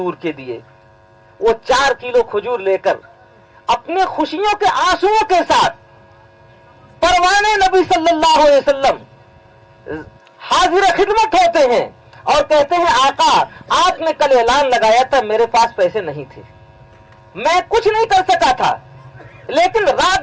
के दिए। वो 4 किलो खजूर लेकर अपने खुशियों के आंसुओं के साथ परवाने नबी सल्लल्लाहु अलैहि वसल्लम हाजिर खिदमत होते हैं और कहते हैं, आका आपने कल ऐलान लगाया था, मेरे पास पैसे नहीं थे, मैं कुछ नहीं कर सका था, लेकिन रात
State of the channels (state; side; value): identical; both; correlation 1.00